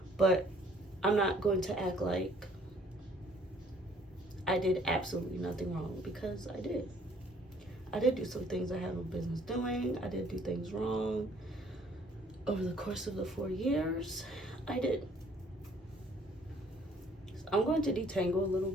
But I'm not going to act like I did absolutely nothing wrong, because I did. I did do some things I had no business doing. I did do things wrong over the course of the 4 years. I did. So I'm going to detangle a little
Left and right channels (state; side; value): normal; both; correlation 0.60